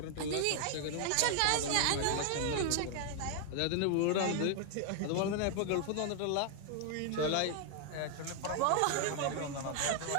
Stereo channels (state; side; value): different; both; correlation 0.00